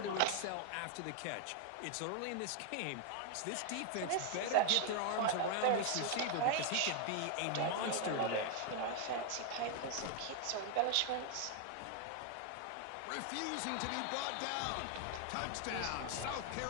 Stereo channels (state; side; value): different; both; correlation 0.00